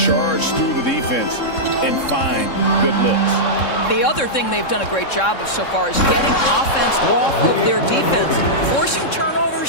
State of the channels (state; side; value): late; right; 3.7 ms